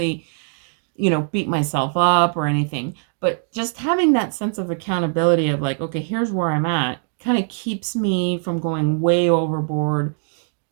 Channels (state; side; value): silent; left; 62 dB below the other